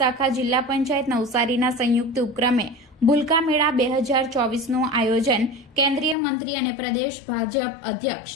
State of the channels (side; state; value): right; drops out; at 6.2 s